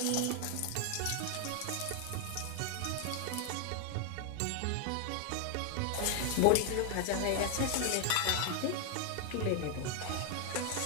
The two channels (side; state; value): both; different; correlation 0.00